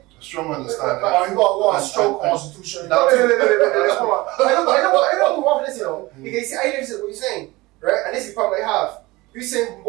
A strong understanding. Or you got a strong constitution? No, I don't move off this, Because see, I understand what you're saying, right? And this is the problem I have. You're saying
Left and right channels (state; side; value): quieter; left; 21.2 dB